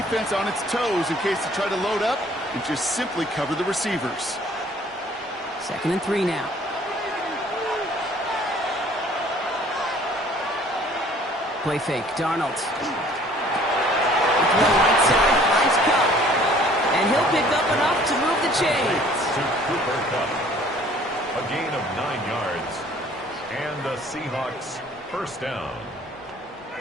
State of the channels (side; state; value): both; normal; correlation 0.55